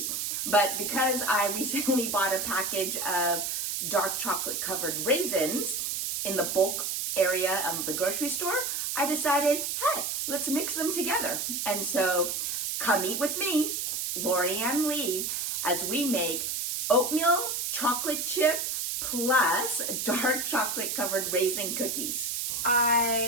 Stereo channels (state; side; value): noise; right; hiss, 2 dB below the sound